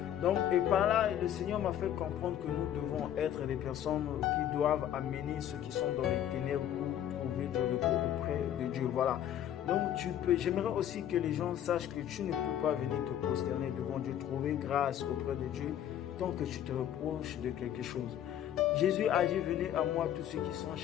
Donc, et par là, le Seigneur m'a fait comprendre que nous devons être des personnes qui doivent amener ceux qui sont dans les ténèbres pour trouver du repos auprès de Dieu. Voilà. Donc, j'aimerais aussi que les gens sachent que tu ne peux pas venir te prosterner devant Dieu, trouver grâce auprès de Dieu, tant que tu te reproches de quelque chose. Jésus a dit, venez à moi tous ceux qui sont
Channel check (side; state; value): right; quieter; 10.7 dB